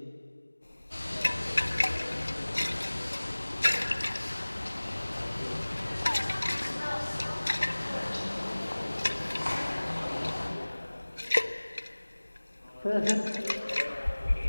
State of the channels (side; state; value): both; inverted; correlation -1.00